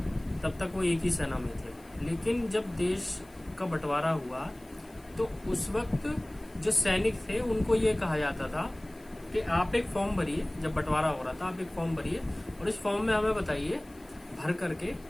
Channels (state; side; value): noise; left; hiss, 27 dB below the sound